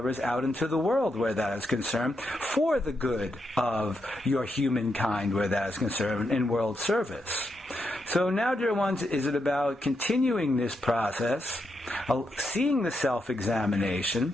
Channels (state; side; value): normal; both; correlation 0.83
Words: out into the world where that is concerned, for the good of your humankind where that is concerned, in world service. So now, dear ones, is it about continuing this process, seeing the self-examination,